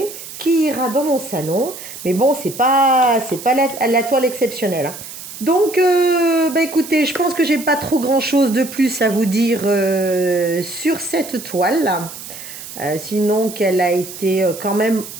qui ira dans mon salon. Mais bon, c'est pas la toile exceptionnelle. Hein. Donc, écoutez, je pense que j'ai pas trop grand-chose de plus à vous dire sur cette toile-là. Sinon qu'elle a été quand même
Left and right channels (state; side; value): noise; right; hiss, 13 dB below the sound